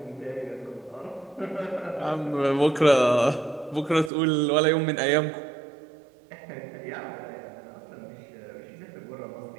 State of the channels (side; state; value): left; drops out; at 4.1 s